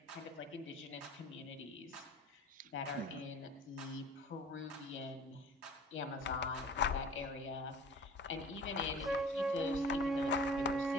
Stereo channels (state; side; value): normal; both; correlation 0.45